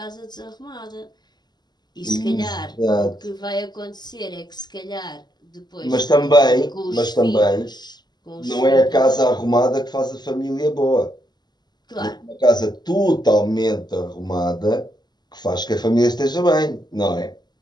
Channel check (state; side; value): late; right; 0.20 ms